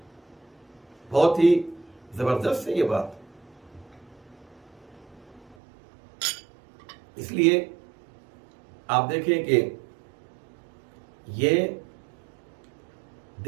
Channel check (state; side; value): drops out; left; at 5.6 s